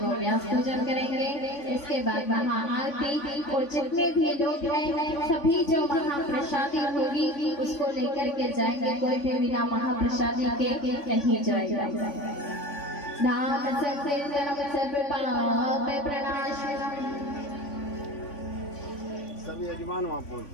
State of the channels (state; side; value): late; right; 3.5 ms